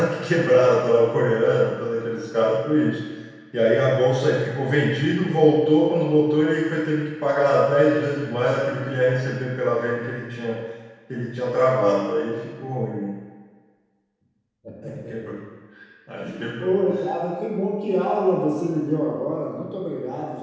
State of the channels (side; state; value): both; identical; correlation 1.00